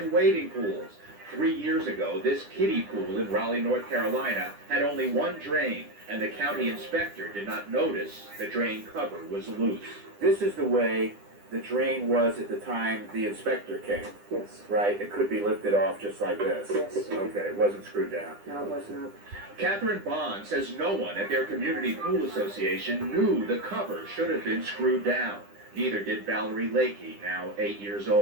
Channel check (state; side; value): late; left; 9.9 ms